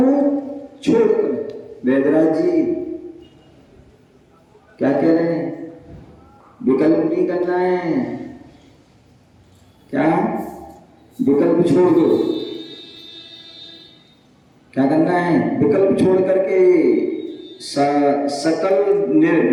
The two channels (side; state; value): both; identical; correlation 1.00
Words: छोड़कर, वैदराज जी क्या कह रहे हैं? विकल्प नहीं करना है, क्या विकल्प छोड़ दो। क्या करना है? विकल्प छोड़ करके सकल